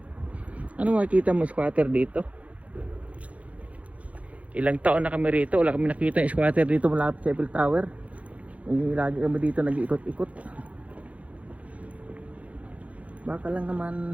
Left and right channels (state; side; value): late; left; 0.066 ms